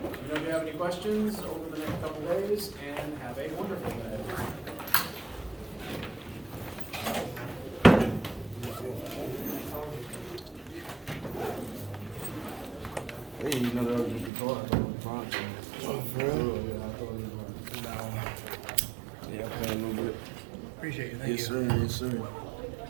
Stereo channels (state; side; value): drops out; left; at 14.3 s